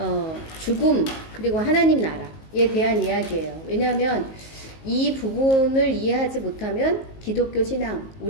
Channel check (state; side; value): late; right; 19 ms